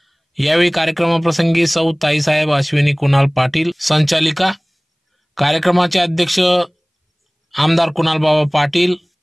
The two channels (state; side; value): identical; both; correlation 1.00